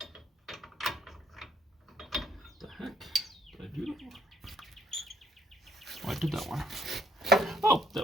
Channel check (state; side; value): normal; both; correlation 0.67